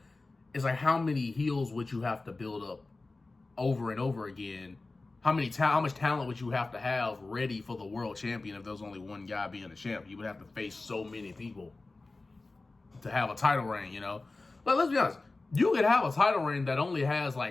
It's like, how many heels would you have to build up over and over again? How much talent would you have to have ready for the world champion if there was only one guy being a champ? You would have to face so many people to have a title reign, you know? But let's be honest, you could have a title reign that only has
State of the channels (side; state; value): right; quieter; 3.4 dB